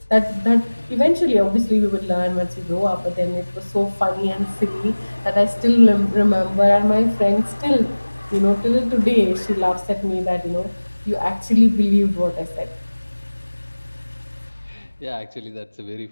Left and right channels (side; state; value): both; inverted; correlation -1.00